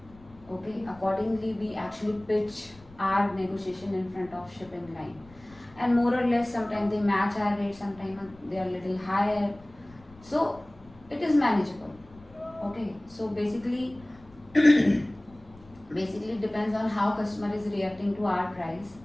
Okay, accordingly we actually pitch our negotiation in front of shipping line, and more or less sometimes they match our rate, sometimes they are little higher, so it is manageable. Okay, so basically basically depends on how customer is reacting to our price,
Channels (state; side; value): noise; left; rumble, 24 dB below the sound